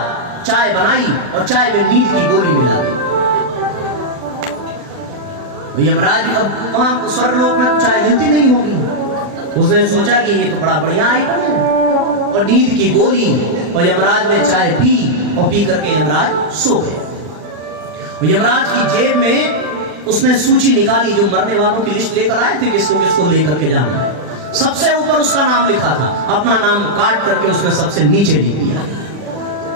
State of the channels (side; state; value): left; late; 40 ms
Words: चाय बनाई और चाय में नींद की गोली मिला दी। यमराज, अब वहां स्वर्गलोक में तो चाय मिलती नहीं होगी, उसने सोचा कि ये तो बड़ा बढ़िया आइटम है, और नींद की गोली, और यमराज ने चाय पी और पी करके यमराज सो गए। यमराज की जेब में उसने सूची निकाली, जो मरने वालों की लिस्ट लेकर आए थे, किसको किसको लेकर के जाना है। सबसे ऊपर उसका नाम लिखा था, अपना नाम काट करके उसने सबसे नीचे लिख दिया।